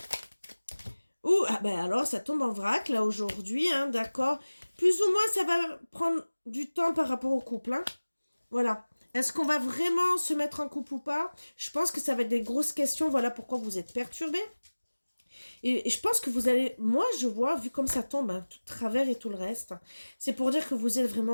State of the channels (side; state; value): both; inverted; correlation -1.00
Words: Ouh, ah ben alors, ça tombe en vrac, là, aujourd'hui, hein, d'accord. Plus ou moins, ça va prendre du temps par rapport au couple, hein. Voilà. Est-ce qu'on va vraiment se mettre en couple ou pas? Je pense que ça va être des grosses questions, voilà pourquoi vous êtes perturbés. Et je pense que vous allez... Moi, je vois, vu comme ça tombe, hein, tout travers et tout le reste, c'est pour dire que vous êtes